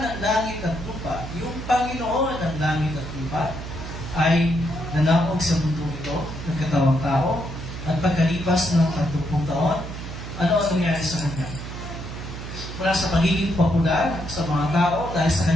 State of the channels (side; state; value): right; noise; hum, 9 dB below the sound